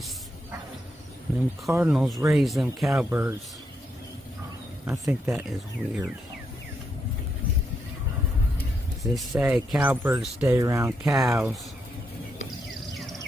And them cardinals raise them cowbirds. I think that is weird. They say cowbirds stay around cows.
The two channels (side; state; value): both; normal; correlation 0.80